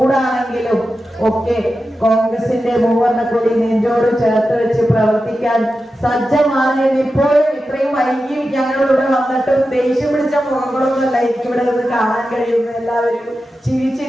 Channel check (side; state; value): both; normal; correlation 0.92